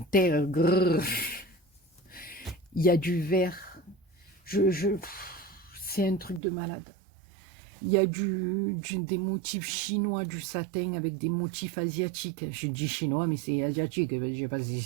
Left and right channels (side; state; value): left; drops out; at 6.4 s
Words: Grrr. Il y a du vert. C'est un truc de malade. Il y a des motifs chinois, du satin avec des motifs asiatiques. Je dis chinois, mais c'est asiatique. Je ne sais pas si